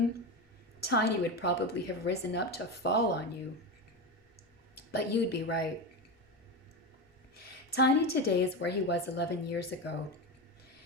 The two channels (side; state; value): both; normal; correlation 0.18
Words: Tiny would probably have risen up to fall on you. But you'd be right. Tiny today is where he was 11 years ago,